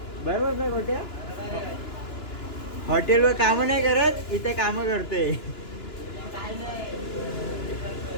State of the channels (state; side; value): late; right; 2.9 ms